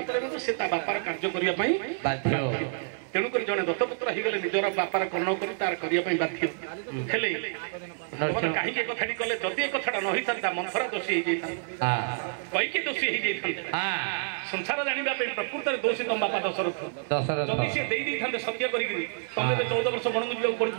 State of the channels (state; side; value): silent; left; 59 dB below the other